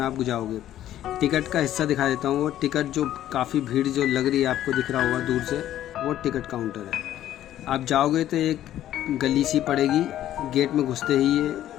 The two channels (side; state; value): right; quieter; 12.4 dB